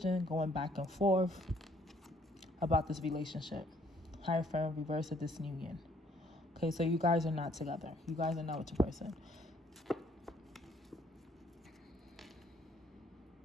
going back and forth about this relationship. Hierophant, reverse of disunion. Okay, so you guys are not together. You guys are not with your person.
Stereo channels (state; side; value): normal; both; correlation 0.64